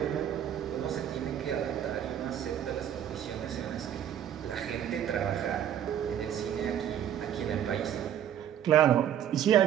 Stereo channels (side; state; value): left; quieter; 10.2 dB